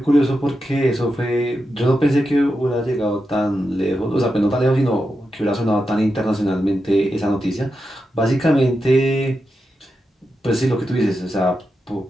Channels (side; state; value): both; normal; correlation 0.88